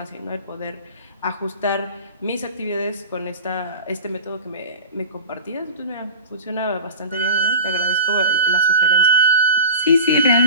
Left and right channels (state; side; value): inverted; both; correlation -0.36